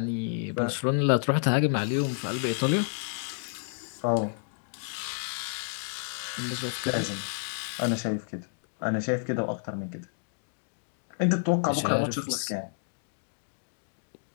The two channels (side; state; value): right; silent; digital silence